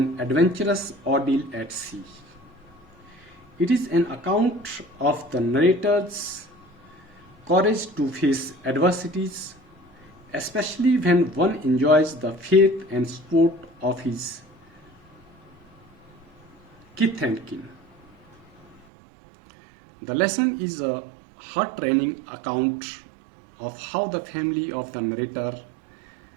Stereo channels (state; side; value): drops out; left; at 18.9 s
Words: adventurous ordeal at sea. It is an account of the narrator's courage to face adversities, especially when one enjoys the faith and support of his kith and kin. The lesson is a heart-rending account of how the family of the narrator,